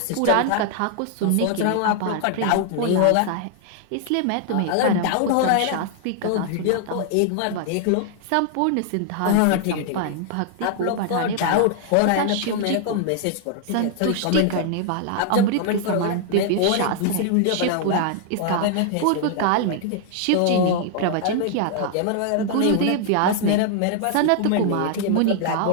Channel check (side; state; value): both; different; correlation 0.00